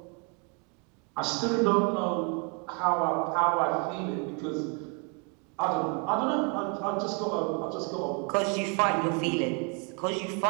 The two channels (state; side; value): quieter; left; 34.4 dB